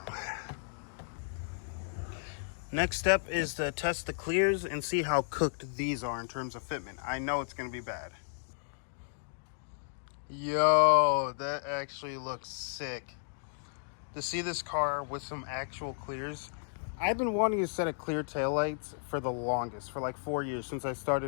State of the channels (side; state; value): right; silent; digital silence